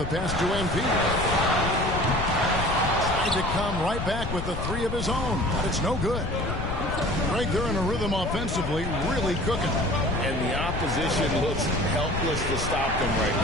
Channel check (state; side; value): noise; left; rumble, 5 dB below the sound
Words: pass to MP. Tried to come right back with the 3 of his own, but it's no good. Greg, they're in a rhythm offensively, really cooking. And the opposition looks helpless to stop them right